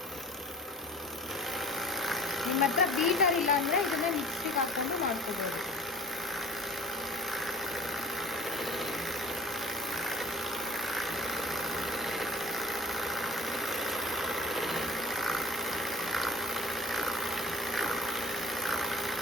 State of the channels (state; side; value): normal; both; correlation 0.44